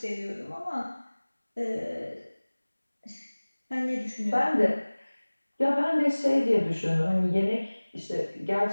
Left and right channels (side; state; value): both; inverted; correlation -1.00